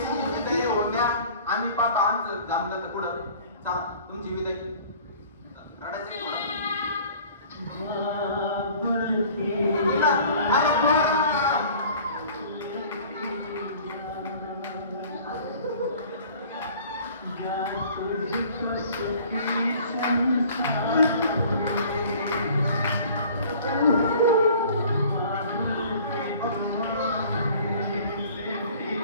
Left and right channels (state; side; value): inverted; both; correlation -0.49